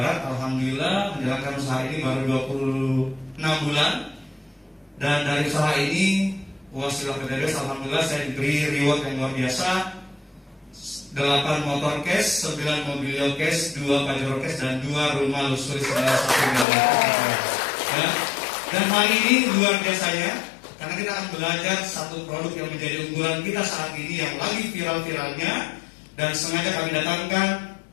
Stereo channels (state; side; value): drops out; right; at 16.7 s